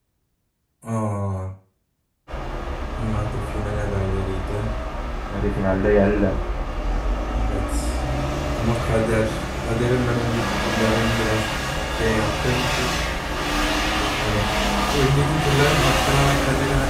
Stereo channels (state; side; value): identical; both; correlation 1.00